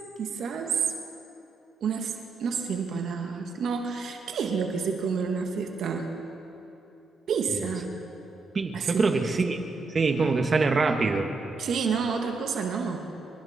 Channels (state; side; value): quieter; left; 4.3 dB